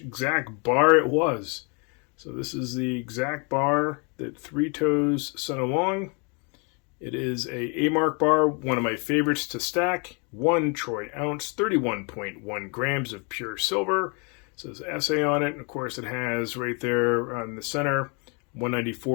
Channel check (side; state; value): right; quieter; 34.0 dB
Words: bar it was. So this is the exact bar that ThreeToes sent along. It is a mark bar, one of my favorites to stack. 1 troy ounce, 31.1 grams of pure silver. It says SA on it, and of course it has right there on the center